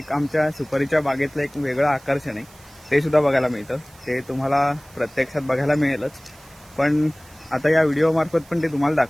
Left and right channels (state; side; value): noise; right; hiss, 25 dB below the sound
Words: आमच्या सुपारीच्या बागेतलं एक वेगळं आकर्षण आहे, ते सुद्धा बघायला मिळतं। ते तुम्हाला प्रत्यक्षात बघायला मिळेलच, पण आता या व्हिडिओ मार्फत पण ते तुम्हाला